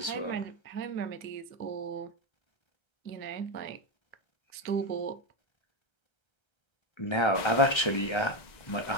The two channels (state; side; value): late; right; 1.3 ms